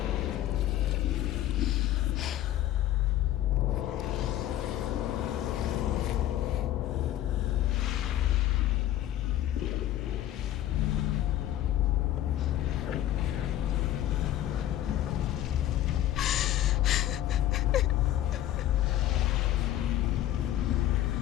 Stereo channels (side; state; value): right; quieter; 13.0 dB